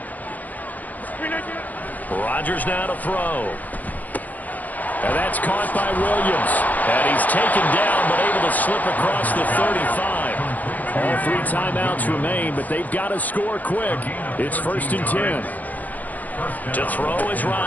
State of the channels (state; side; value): late; right; 0.080 ms